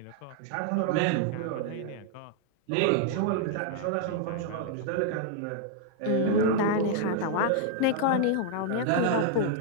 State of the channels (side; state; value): both; different; correlation -0.01